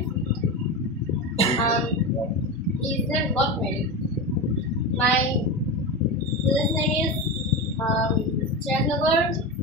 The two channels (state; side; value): normal; both; correlation 0.21